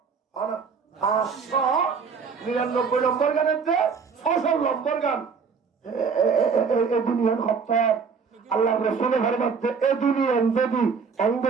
হয় না ৫৯৯ নম্বর গানের যে ৬০০ নম্বর গান এ দুনিয়ার হত্তর আল্লাহ রসুল ঘরে মধ্যে এ দুনিয়ান যদি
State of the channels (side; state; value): left; quieter; 5.7 dB